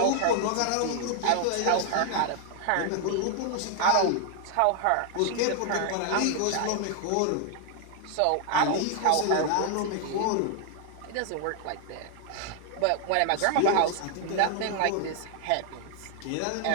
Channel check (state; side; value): different; both; correlation 0.00